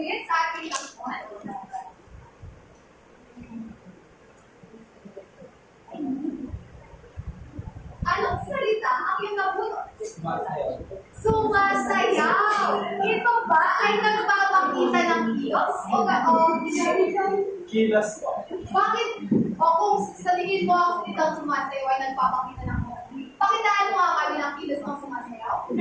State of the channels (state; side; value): identical; both; correlation 1.00